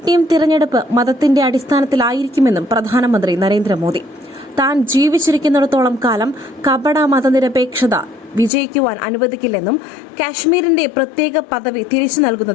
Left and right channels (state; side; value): drops out; right; at 8.5 s